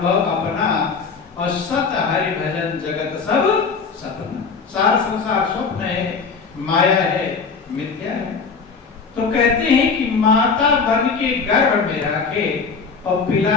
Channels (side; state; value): right; quieter; 5.1 dB